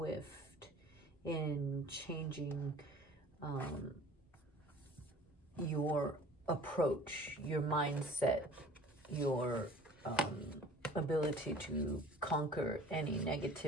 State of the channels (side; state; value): both; normal; correlation 0.47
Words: in changing your approach, your mindset, your ability to conquer any